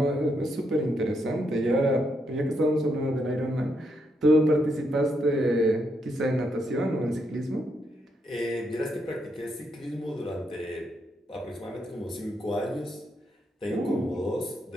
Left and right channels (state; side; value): normal; both; correlation 0.79